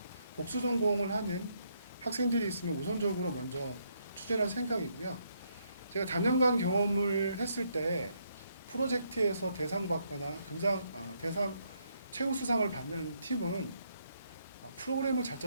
복수전공을 하는 학생들이 있으면 우선적으로 먼저 추진할 생각이고요. 제가 단연간 경험을 했을 때 프로젝트에서 대상 받거나 대상 최우수상을 받는 팀은 프로그램을 잘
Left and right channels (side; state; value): both; inverted; correlation -0.74